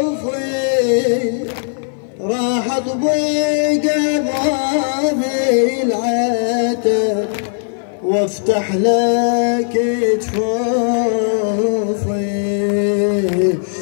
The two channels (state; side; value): silent; right; 57 dB below the other